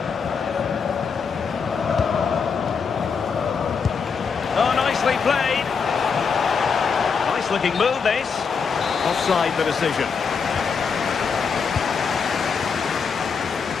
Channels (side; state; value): right; quieter; 5.8 dB